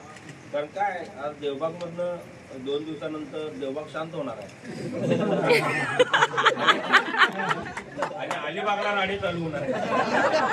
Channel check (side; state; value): both; identical; correlation 1.00